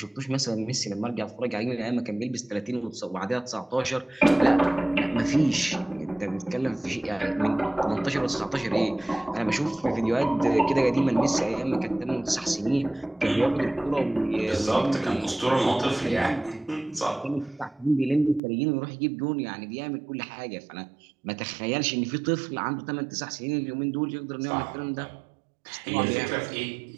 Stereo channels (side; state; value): left; drops out; at 18.4 s